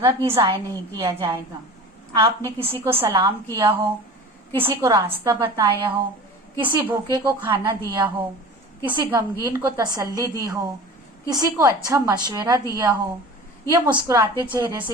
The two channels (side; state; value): both; normal; correlation 0.37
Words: भी ज़ाया नहीं किया जाएगा। आपने किसी को सलाम किया हो, किसी को रास्ता बताया हो, किसी भूखे को खाना दिया हो, किसी गमगीन को तसल्ली दी हो, किसी को अच्छा मशवरा दिया हो, या मुस्कुराते चेहरे